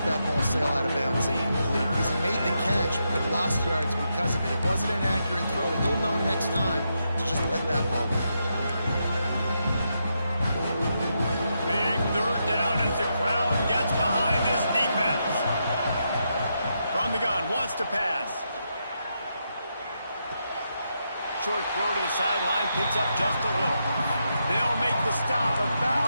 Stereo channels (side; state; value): both; inverted; correlation -0.83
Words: that ball sail out of bounds and complete. Because he made the catch, but lost yards because of it. It wasn't an accurate throw. He'll know next time to just let that ball go. Big 3rd down as the crowd gets behind this defense. From the gun, wants to pass. Short throw to the sideline, picks up just a little. They'll make the stop